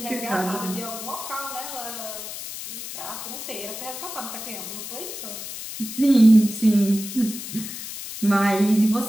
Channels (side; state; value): left; noise; hiss, 9 dB below the sound